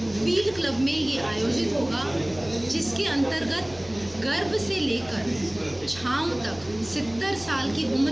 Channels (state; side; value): noise; right; hum, 20 dB below the sound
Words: फील्ड क्लब में ये आयोजित होगा, जिसके अंतर्गत गर्भ से लेकर छांव तक 70 साल की